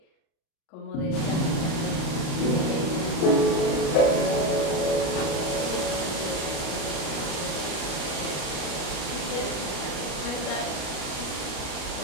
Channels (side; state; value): right; late; 37 ms